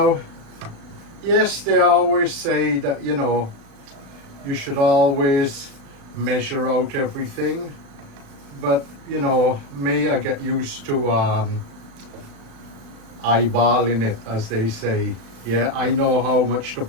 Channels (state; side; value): late; left; 36 ms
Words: yes, they always say that, you know, you should always measure out everything, but you know, me, I get used to eyeballing it, as they say. Yeah, I know how much to